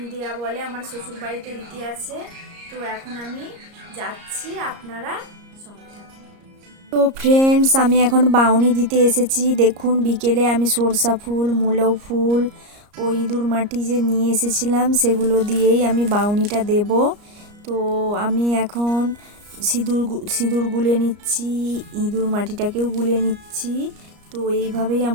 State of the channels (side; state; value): left; late; 34 ms